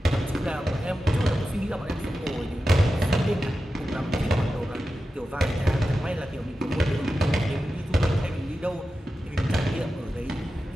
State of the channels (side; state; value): both; normal; correlation 0.92